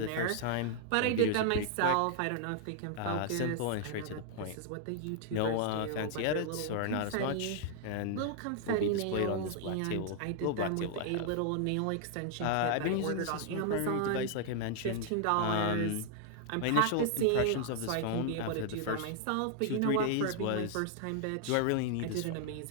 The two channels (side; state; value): both; different; correlation 0.00